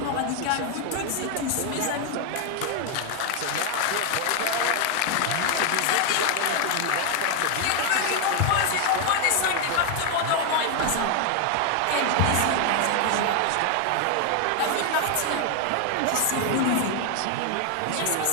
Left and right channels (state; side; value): different; both; correlation 0.00